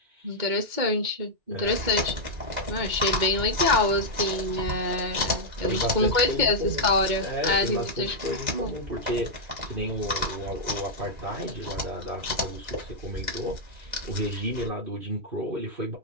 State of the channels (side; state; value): left; late; 2.2 ms